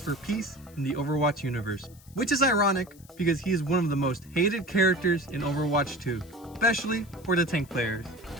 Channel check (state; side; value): noise; left; hiss, 25 dB below the sound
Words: for peace in the Overwatch universe. Which is ironic because he is one of the most hated characters in Overwatch 2, especially for the tank players.